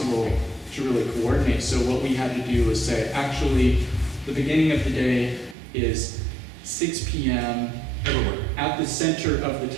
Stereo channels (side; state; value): left; drops out; at 5.6 s